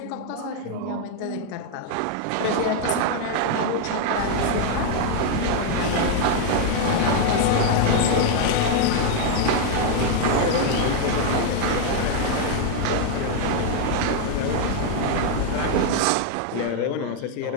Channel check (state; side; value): different; both; correlation 0.00